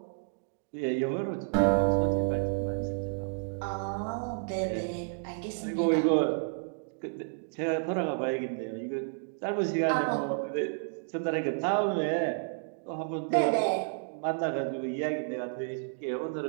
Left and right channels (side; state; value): left; silent; digital silence